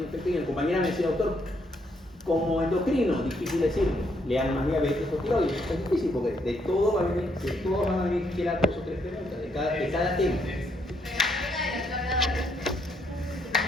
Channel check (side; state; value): both; normal; correlation 0.73